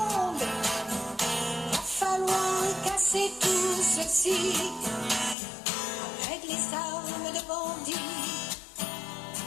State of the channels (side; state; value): right; drops out; at 5.4 s